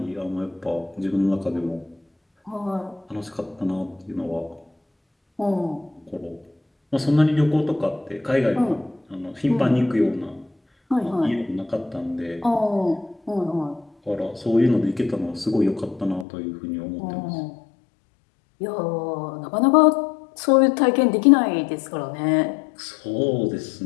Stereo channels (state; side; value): drops out; right; at 16.2 s